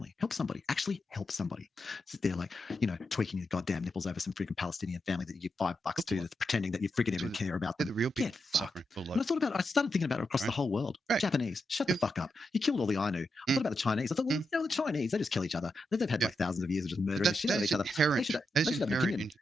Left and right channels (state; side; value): normal; both; correlation 0.86